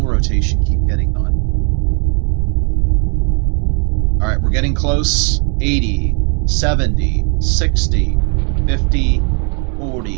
rotation keep getting done? All right, we're getting close. 80, 70, 60, 50,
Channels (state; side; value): quieter; left; 37.9 dB